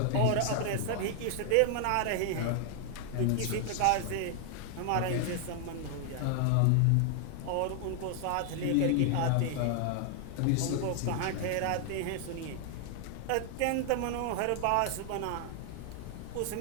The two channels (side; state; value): both; different; correlation 0.00